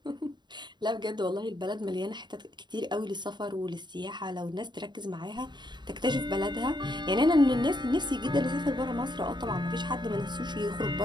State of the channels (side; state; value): left; late; 0.21 ms